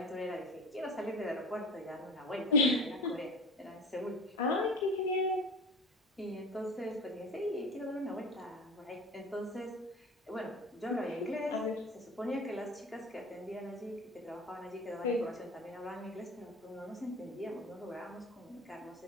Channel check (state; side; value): normal; both; correlation 0.34